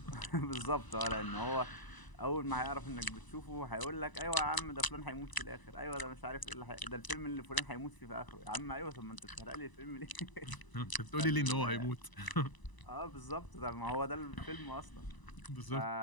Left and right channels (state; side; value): late; right; 1.0 ms